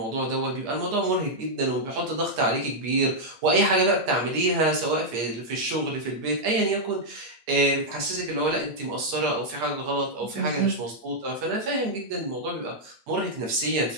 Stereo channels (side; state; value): left; late; 8.5 ms